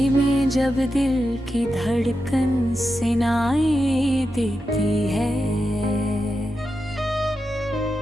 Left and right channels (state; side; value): normal; both; correlation 0.89